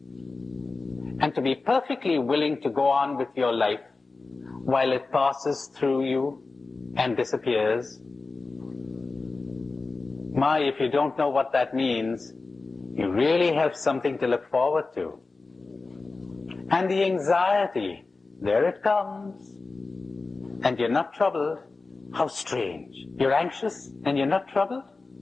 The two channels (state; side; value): quieter; right; 3.8 dB